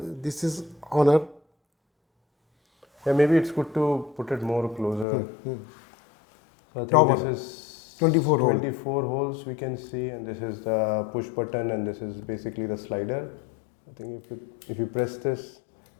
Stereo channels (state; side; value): drops out; right; at 5.1 s